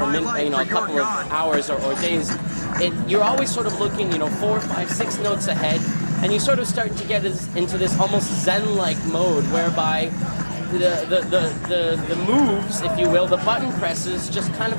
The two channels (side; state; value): both; inverted; correlation -1.00